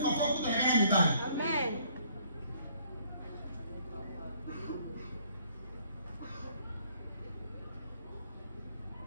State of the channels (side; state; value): both; inverted; correlation -0.63